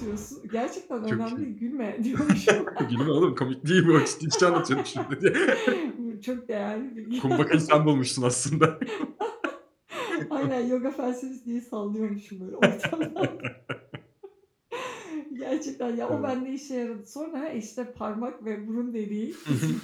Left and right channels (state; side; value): identical; both; correlation 1.00